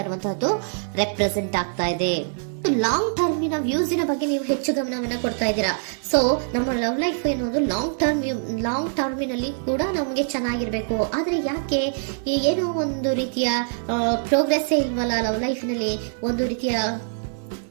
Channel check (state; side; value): silent; left; 63 dB below the other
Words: ಇರುವಂತಹದ್ದು ರೆಪ್ರೆಸೆಂಟ್ ಆಗ್ತಾ ಇದೆ. ಲಾಂಗ್ ಟರ್ಮಿನ ವ್ಯೂಸಿನ ಬಗ್ಗೆ ನೀವು ಹೆಚ್ಚು ಗಮನವನ್ನ ಕೊಡ್ತಾ ಇದ್ದೀರಾ. ಸೊ ನಮ್ಮ ಲವ್ ಲೈಫ್ ಏನೋದು ಲಾಂಗ್ ಟರ್ಮಿನಲ್ಲಿ ಕೂಡ ನಮಗೆ ಚೆನ್ನಾಗಿರ್ಬೇಕು. ಆದ್ರೆ ಯಾಕೆ ಏನೋ ಒಂದು ರೀತಿಯ ಪ್ರೋಗ್ರೆಸ್ ಇಲ್ವಲ್ಲ ಲವ್ ಲೈಫಿನಲ್ಲಿ,